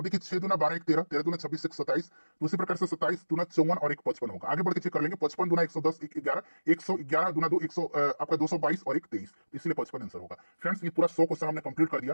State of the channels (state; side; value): inverted; both; correlation -1.00